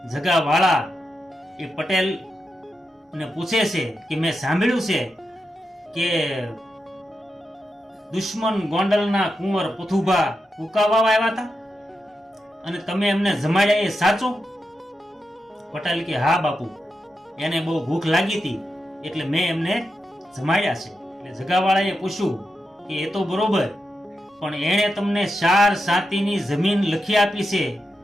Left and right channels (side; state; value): both; normal; correlation 0.88